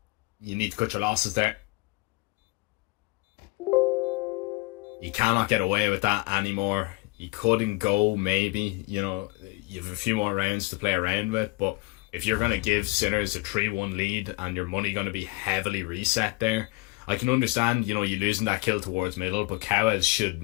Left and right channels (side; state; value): right; quieter; 24.6 dB